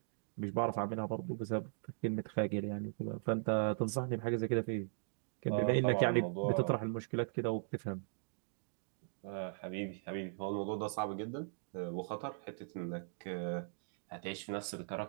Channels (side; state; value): left; silent; digital silence